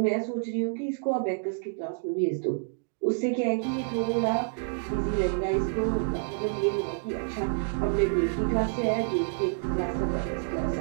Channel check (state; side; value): silent; left; digital silence